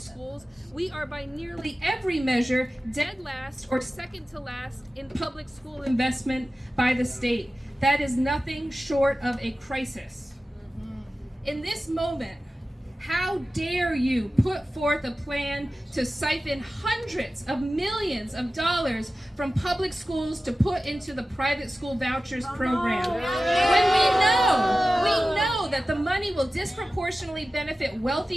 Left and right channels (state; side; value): normal; both; correlation 0.95